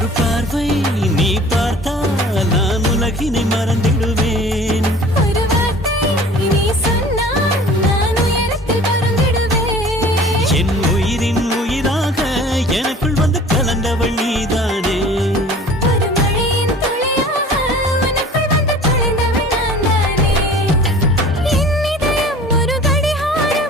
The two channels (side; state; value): both; normal; correlation 0.46